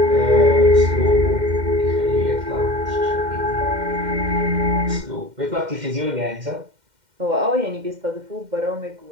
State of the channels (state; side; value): late; left; 2.1 ms